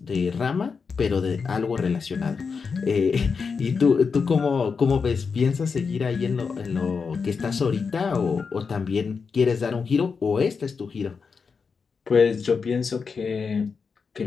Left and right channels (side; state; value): right; quieter; 5.4 dB